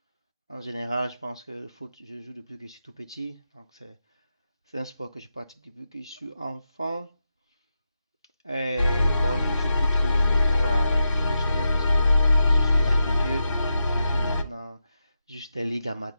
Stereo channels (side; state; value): both; inverted; correlation -0.88